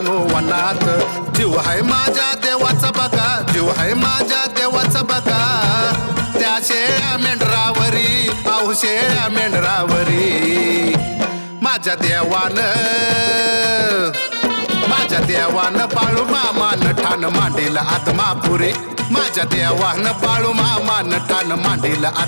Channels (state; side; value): inverted; both; correlation -1.00